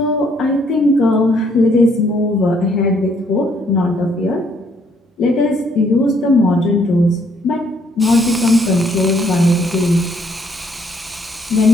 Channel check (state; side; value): normal; both; correlation 0.67